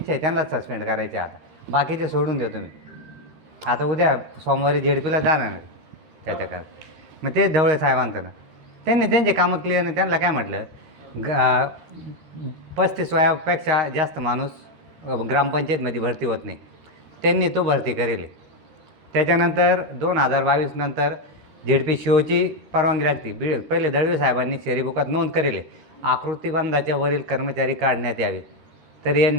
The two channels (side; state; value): left; late; 13 ms